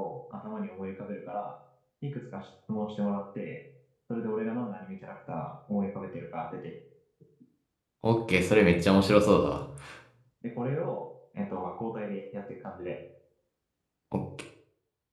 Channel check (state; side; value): identical; both; correlation 1.00